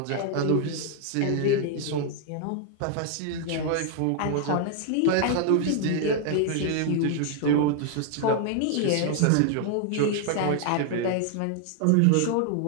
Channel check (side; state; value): both; different; correlation 0.00